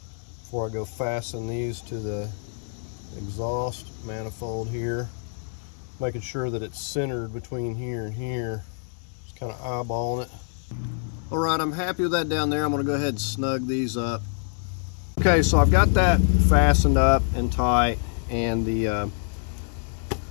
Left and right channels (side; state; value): right; silent; 61 dB below the other